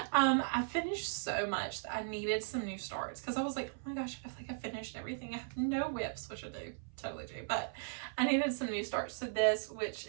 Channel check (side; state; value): left; silent; 53 dB below the other